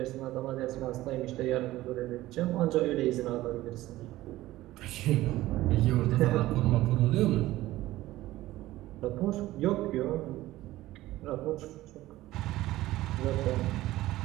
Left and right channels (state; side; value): quieter; left; 16.4 dB